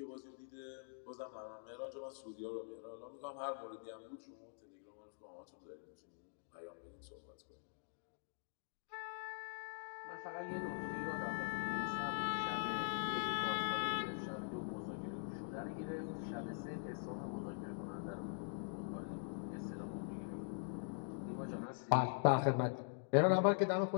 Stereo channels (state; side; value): silent; right; digital silence